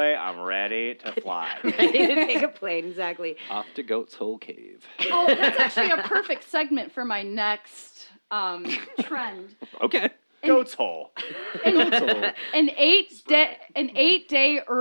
I'm ready to fly. Ready to take a plane, exactly. Off to Goat's Hole Cave. Oh, that's actually a perfect segment for my next trend. Okay. Goat's hole. An 8-day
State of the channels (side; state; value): both; inverted; correlation -1.00